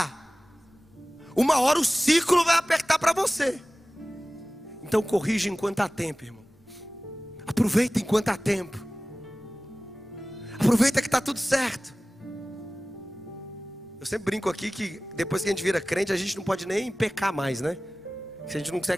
uma hora o ciclo vai apertar para você. Então corrija enquanto há tempo, irmão. Aproveita enquanto há tempo. Aproveita que está tudo certo. Eu sempre brinco aqui que depois que a gente vira crente, a gente não pode nem pecar mais, né? A gente não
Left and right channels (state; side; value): normal; both; correlation 0.97